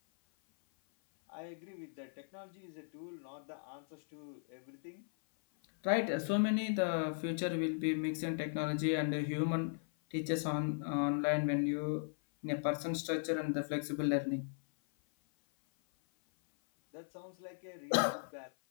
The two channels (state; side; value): silent; right; 53 dB below the other